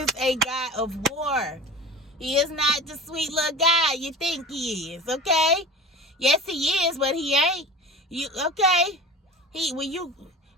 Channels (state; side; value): normal; both; correlation 0.35